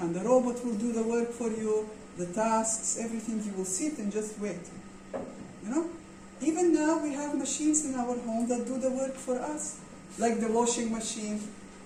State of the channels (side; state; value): both; identical; correlation 1.00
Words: And the robot will do the work for you, the tasks, everything. You will sit and just wait. You know? Even now we have machines in our home that do the work for us. Like the washing machine.